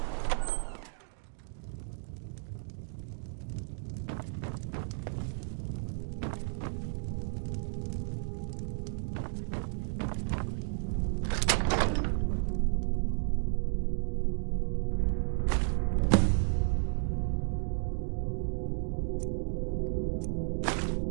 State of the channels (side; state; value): left; silent; digital silence